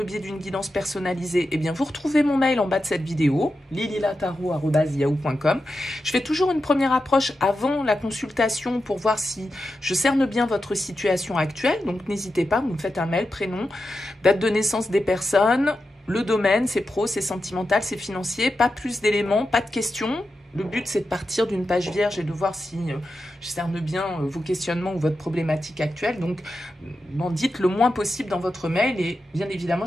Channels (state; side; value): normal; both; correlation 0.89